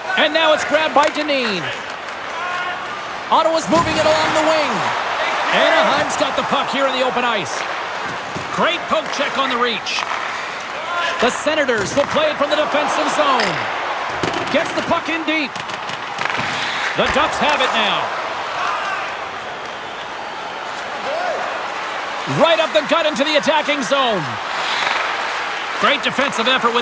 And now it's grabbed by Dineen. Ottawa's moving it along the wing. Anaheim's got the puck here in the open ice. Great poke check on the reach. The Senators will play it from the defensive zone. Gets the puck in deep. The Ducks have it now. Right up the gut into the attacking zone. Great defensive effort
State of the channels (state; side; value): identical; both; correlation 1.00